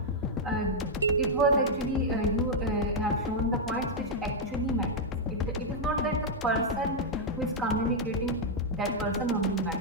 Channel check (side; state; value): both; normal; correlation -0.03